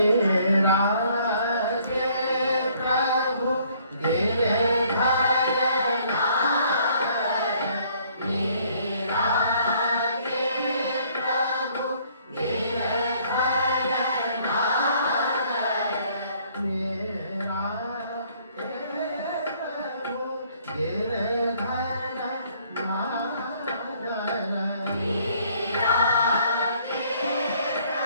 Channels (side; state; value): both; inverted; correlation -0.62